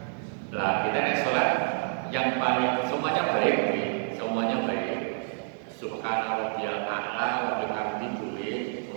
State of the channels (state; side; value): silent; left; digital silence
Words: Lah kita nek salat yang paling semuanya baik, semuanya baik. Subhana rabbiyal a'la wa bihamdihi boleh